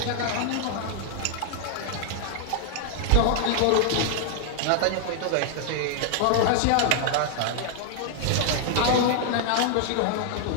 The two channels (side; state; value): both; different; correlation 0.00